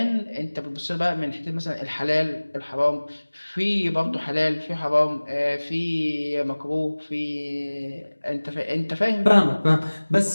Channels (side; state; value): both; inverted; correlation -1.00